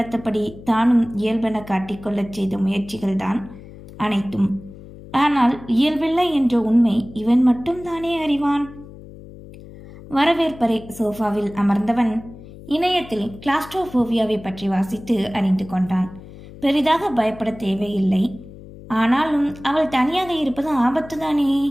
தானும் இயல்பென காட்டிக்கொள்ளச் செய்த முயற்சிகள்தான் அனைத்தும். ஆனால் இயல்பில்லை என்ற உண்மை இவன் மட்டும் தானே அறிவான். வரவேற்பறை சோஃபாவில் அமர்ந்தவன் இணையத்தில் கிளாஸ்ட்ரோபோபியாவை பற்றி வாசித்து அறிந்து கொண்டான். பெரிதாக பயப்பட தேவையில்லை. ஆனாலும் அவள் தனியாக இருப்பது ஆபத்துதானே.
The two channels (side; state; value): left; noise; hum, 17 dB below the sound